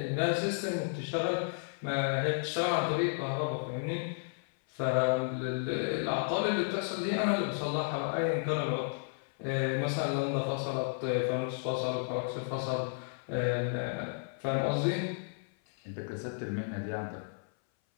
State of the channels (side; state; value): right; silent; 56 dB below the other